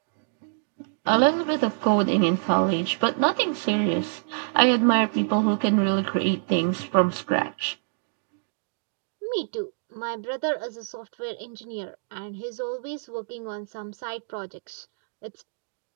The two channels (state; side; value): silent; left; digital silence